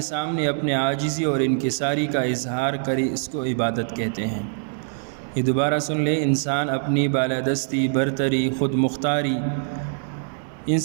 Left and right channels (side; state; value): left; silent; digital silence